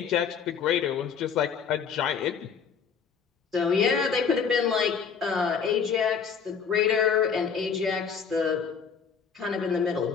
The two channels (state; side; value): quieter; right; 6.5 dB